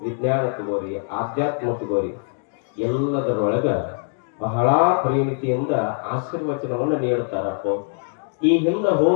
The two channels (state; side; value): silent; right; 56 dB below the other